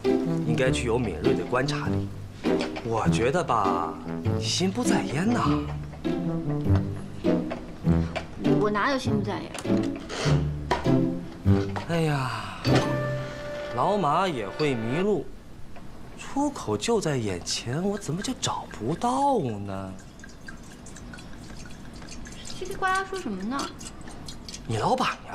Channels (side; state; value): both; identical; correlation 1.00